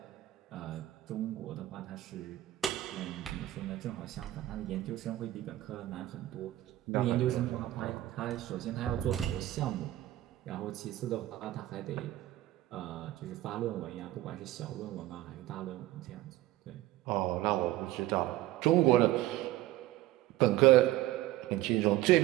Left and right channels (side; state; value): left; quieter; 15.6 dB